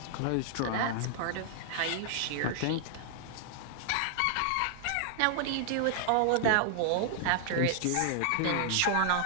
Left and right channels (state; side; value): different; both; correlation 0.00